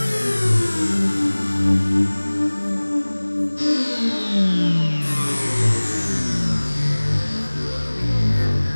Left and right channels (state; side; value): inverted; both; correlation -1.00